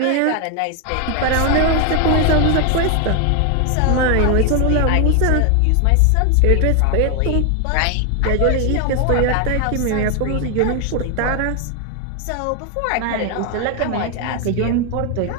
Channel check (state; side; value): different; both; correlation 0.01